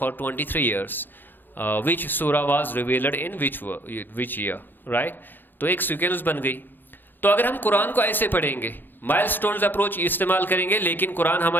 23 years विच सूरा was revealed in which year, right. तो एक sequence बन गई। तो अगर हम कुरान को ऐसे पढ़ेंगे, माइलस्टोन्स अप्रोच इस्तेमाल करेंगे, लेकिन कुरान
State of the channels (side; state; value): right; late; 0.093 ms